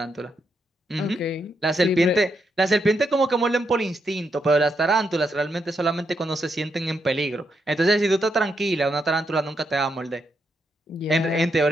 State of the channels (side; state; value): both; normal; correlation 0.81